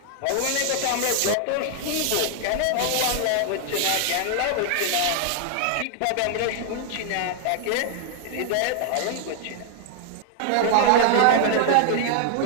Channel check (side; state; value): both; different; correlation 0.00